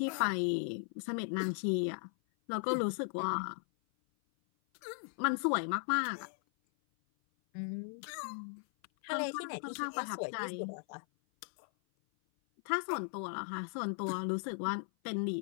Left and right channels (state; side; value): silent; right; 53 dB below the other